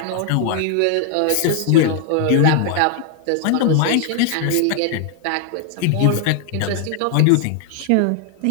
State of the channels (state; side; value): different; both; correlation 0.00